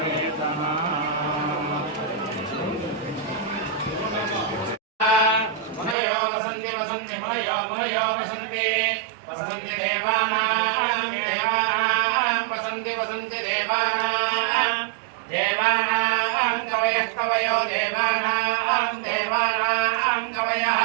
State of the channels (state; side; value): drops out; left; at 6.0 s